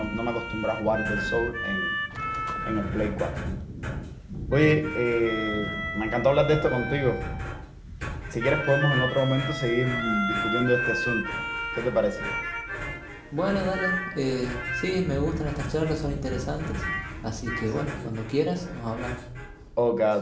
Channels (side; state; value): both; identical; correlation 1.00